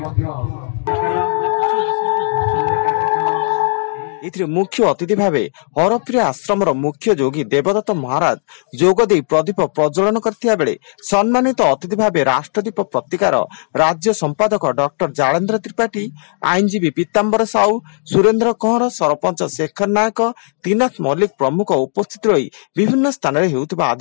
मुख्य अतिथि भाव हरप्रिय आश्रम मुख्य जोगी देवदत्त महाराज जोगदे प्रदीप प्रज्वलन करथिया बेले सम्मानित अतिथि भाव राष्ट्रदीप पत्रिकार राज्य संपादक डॉक्टर जालेन्द्र त्रिपाठी, आईनजीवी पीताम्बर साहू, सुरेन्द्र कंवर, सरपंच शेखर नायक, त्रिनाथ मल्लिक प्रमुख उपस्थित रही विभिन्न स्थान में हेउथिबा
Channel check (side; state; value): right; silent; digital silence